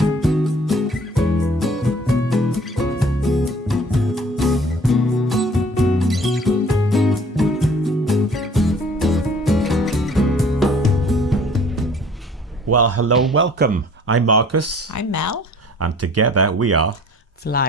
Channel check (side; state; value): both; normal; correlation 0.52